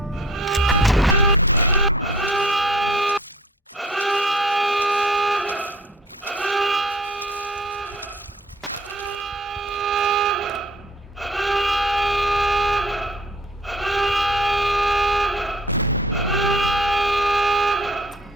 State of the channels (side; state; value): both; normal; correlation 0.53